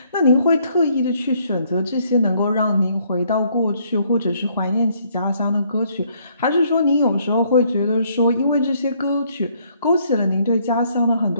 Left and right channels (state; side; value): inverted; both; correlation -0.67